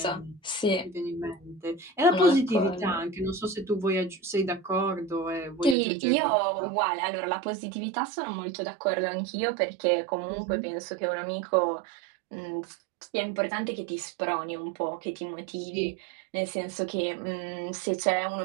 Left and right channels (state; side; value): drops out; left; at 5.8 s